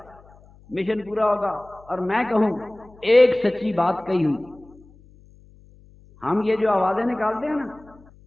مشن پورا ہوگا. اور میں کہوں ایک سچی بات کہی ہوئی, ہم یہ جو آوازیں نکالتے ہیں نا,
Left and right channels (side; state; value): left; noise; hum, 26 dB below the sound